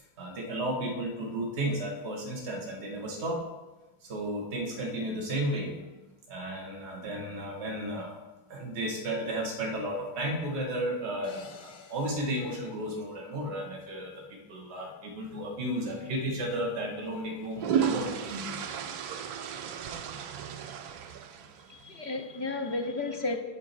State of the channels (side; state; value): left; late; 3.3 ms